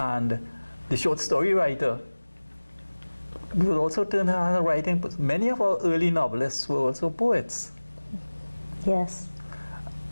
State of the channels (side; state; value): both; inverted; correlation -1.00